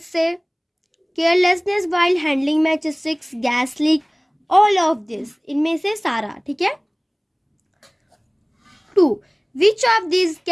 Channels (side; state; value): both; identical; correlation 1.00